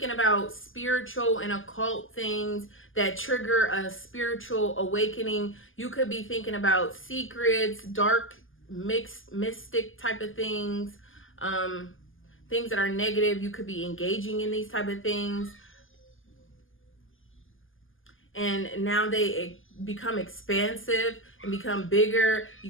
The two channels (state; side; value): late; right; 0.58 ms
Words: about spiritual and occult things that trigger a spiritual awakening. You could be thinking about secrets, dark, mixed, mystic type of things, things that are negative. You could be engaging in these type of things. And now they become expansive and become bigger. You